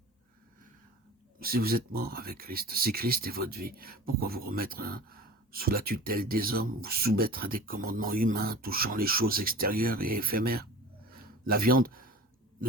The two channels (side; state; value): both; normal; correlation 0.38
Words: Si vous êtes mort avec Christ, si Christ est votre vie, pourquoi vous remettre sous la tutelle des hommes, vous soumettre à des commandements humains touchant les choses extérieures et éphémères? La viande